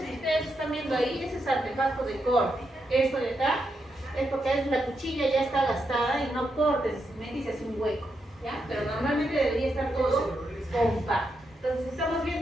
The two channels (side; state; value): both; normal; correlation 0.83